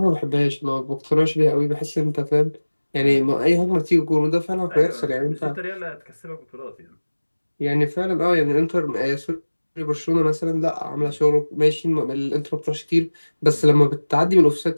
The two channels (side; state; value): both; inverted; correlation -1.00